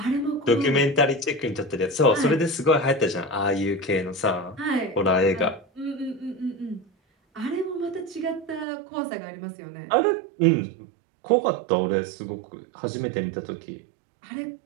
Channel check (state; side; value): drops out; left; at 8.7 s